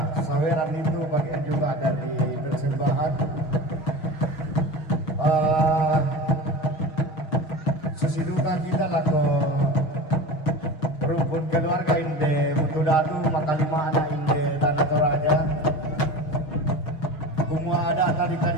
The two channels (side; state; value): right; late; 6.4 ms